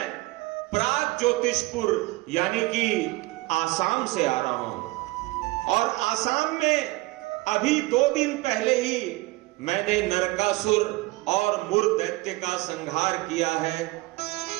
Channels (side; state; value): left; quieter; 21.5 dB